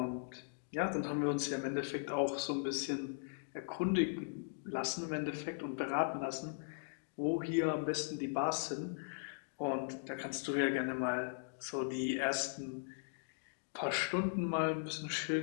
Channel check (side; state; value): right; silent; digital silence